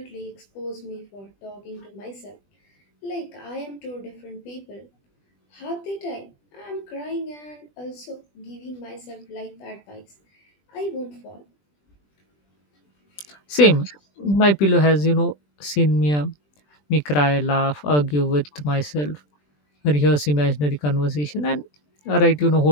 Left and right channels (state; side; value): late; right; 20 ms